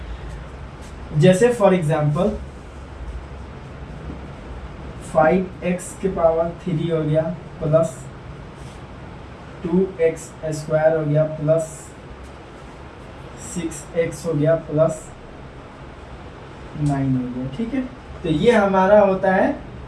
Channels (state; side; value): identical; both; correlation 1.00